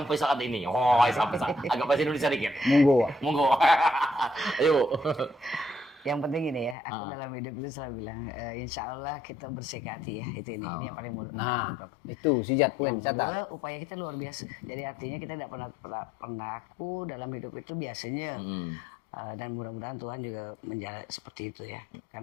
saat ini. Sampai saat agak bahasa Indonesia dikit. Monggo. Ayo. Yang penting ini ya, aku dalam hidup itu selalu bilang, insya Allah kita bersih hati ya, ini yang paling mudah. Nah, itu sijat pun. Upaya kita luar biasa. Jadi artinya kita tidak pernah aku dalam hidup itu biasanya, dan mudah-mudahan Tuhan juga menjalan seperti itu ya,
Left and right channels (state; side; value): drops out; right; at 6.8 s